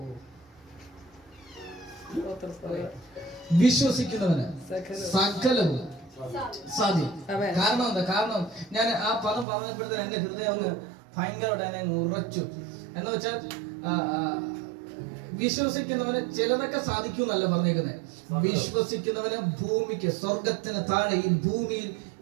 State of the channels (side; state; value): left; drops out; at 9.5 s